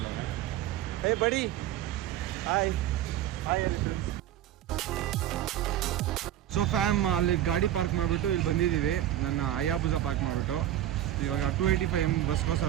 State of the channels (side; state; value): left; quieter; 12.3 dB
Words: ಹೇ ಬಡಿ, ಹಾಯ್ ಹಾಯ್ ಅಲ್ಲಿ ಫ್ರೆಂಡ್ಸ್. ಸೊ ಫ್ಯಾಮ್ ಅಲ್ಲಿ ಗಾಡಿ ಪಾರ್ಕ್ ಮಾಡಿಬಿಟ್ಟು ಇಲ್ಲಿ ಬಂದಿದ್ದೀವಿ. ನನ್ನ ಅಯ್ಯಾಬುಜ ಪಾರ್ಕ್ ಮಾಡಿಬಿಟ್ಟು ಇವಾಗ 285 ಬಸ್ಗೋಸ್ಕರ